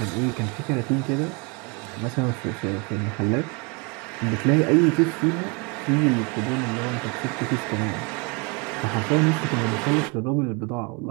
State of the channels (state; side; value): quieter; left; 30.8 dB